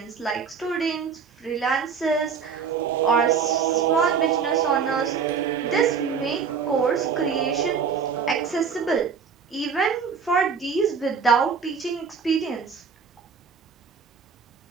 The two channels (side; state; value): left; quieter; 6.1 dB